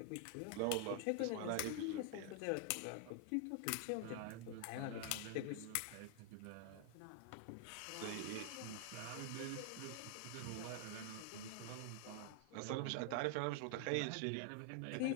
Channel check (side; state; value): both; different; correlation 0.00